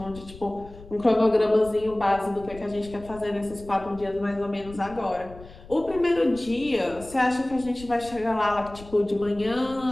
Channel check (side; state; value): left; noise; rumble, 18 dB below the sound